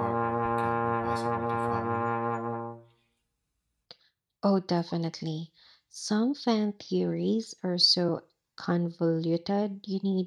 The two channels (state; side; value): identical; both; correlation 1.00